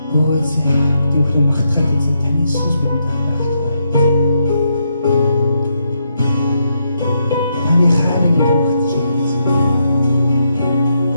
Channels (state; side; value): inverted; both; correlation -0.80